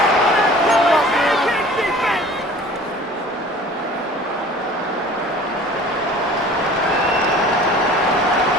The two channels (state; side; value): normal; both; correlation 0.45